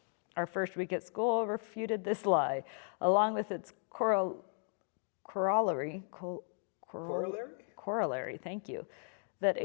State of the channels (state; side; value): silent; right; 54 dB below the other